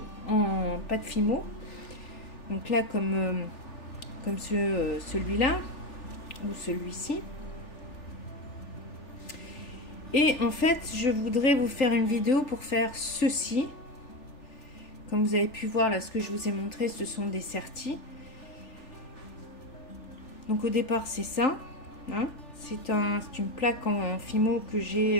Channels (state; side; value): late; right; 3.4 ms